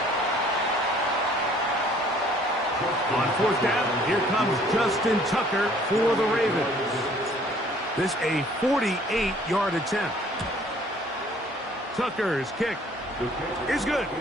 On 4th down, here comes Justin Tucker for the Ravens. This a 48-yard attempt. Tucker's kick is good.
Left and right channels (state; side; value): normal; both; correlation 0.57